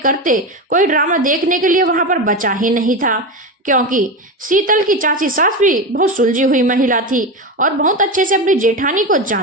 कोई ड्रामा देखने के लिए वहां पर बचा ही नहीं था, क्योंकि शीतल की चाची सास भी बहुत सुलझी हुई महिला थी और बहुत अच्छे से अपनी जेठानी को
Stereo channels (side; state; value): both; normal; correlation 0.19